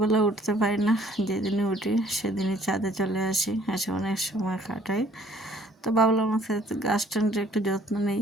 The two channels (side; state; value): both; normal; correlation 0.59